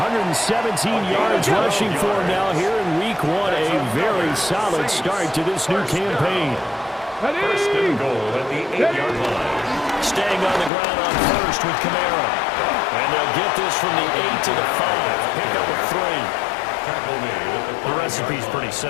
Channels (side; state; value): right; drops out; at 10.7 s